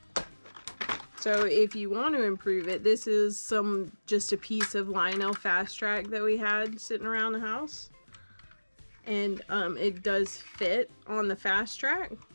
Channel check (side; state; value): both; inverted; correlation -1.00